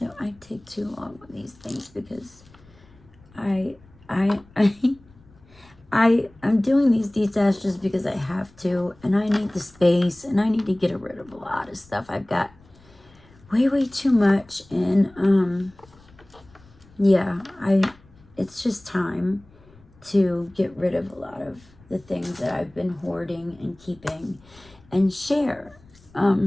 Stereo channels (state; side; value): noise; left; rumble, 27 dB below the sound